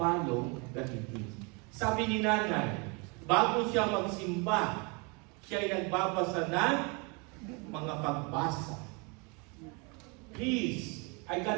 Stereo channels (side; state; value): left; quieter; 31.1 dB